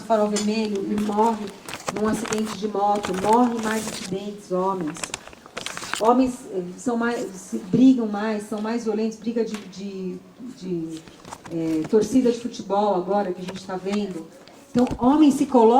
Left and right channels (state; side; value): identical; both; correlation 1.00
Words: o farol vermelho e morre num acidente de moto. Morre mais acidentes, homens. Homens brigam mais, são mais violentos, briga de torcida de futebol agora que a gente está vendo. Então, homens se